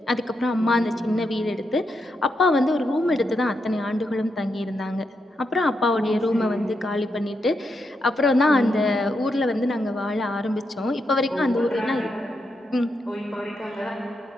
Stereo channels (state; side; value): normal; both; correlation 0.83